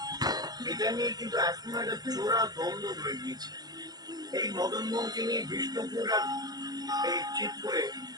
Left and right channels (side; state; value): left; late; 0.19 ms